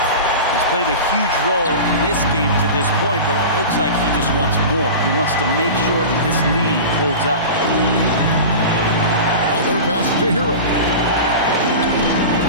He's played a huge role in this game to this point, but it looks like he just wants more. He wants to make sure that this lead holds up. Butler passes to Hero.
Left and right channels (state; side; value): inverted; both; correlation -0.31